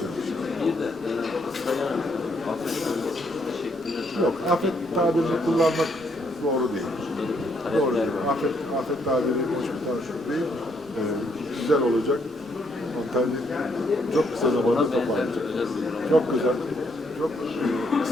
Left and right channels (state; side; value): normal; both; correlation 0.72